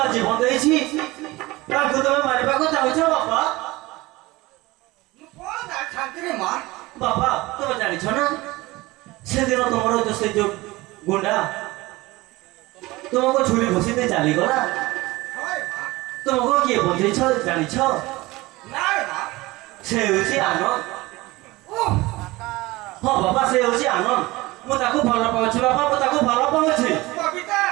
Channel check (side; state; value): left; quieter; 20.5 dB